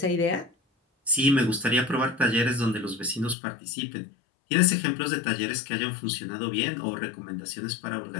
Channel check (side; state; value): right; drops out; at 3.4 s